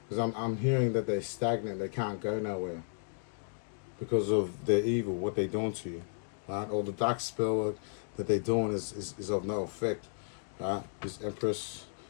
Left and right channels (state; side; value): silent; right; digital silence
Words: Because I'm hearing that they're stagnant. They can't go nowhere because of their evil, what they're doing to you, right? All the dark spell work that they're doing is of no effect, right? This Empress,